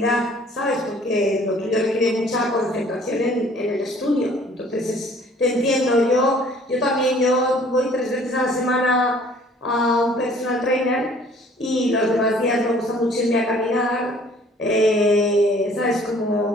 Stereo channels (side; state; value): both; normal; correlation 0.55